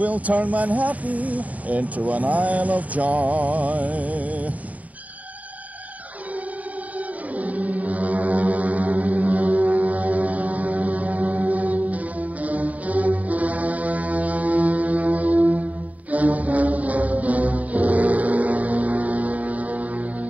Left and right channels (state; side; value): late; left; 0.072 ms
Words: turn Manhattan into an isle of joy.